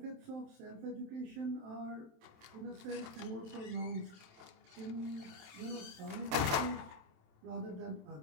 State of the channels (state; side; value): late; left; 27 ms